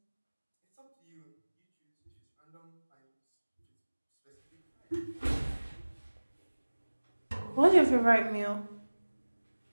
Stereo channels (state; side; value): inverted; both; correlation -1.00